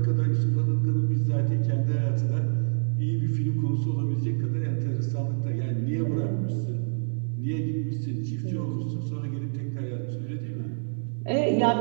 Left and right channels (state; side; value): silent; left; 60 dB below the other